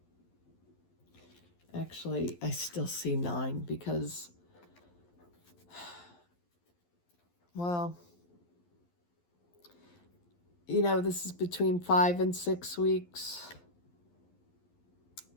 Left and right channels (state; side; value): late; right; 11 ms